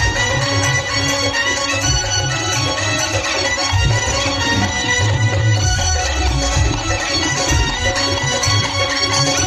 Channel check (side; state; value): both; identical; correlation 1.00